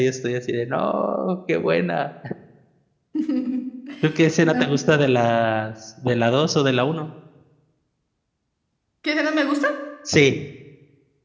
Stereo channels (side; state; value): both; identical; correlation 1.00